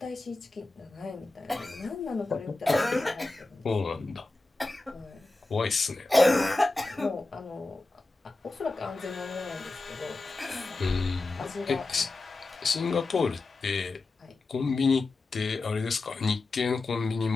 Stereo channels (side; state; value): right; quieter; 3.3 dB